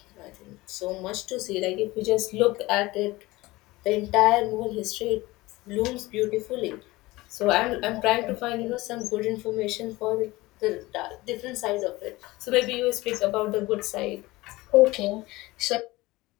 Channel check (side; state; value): right; quieter; 20.1 dB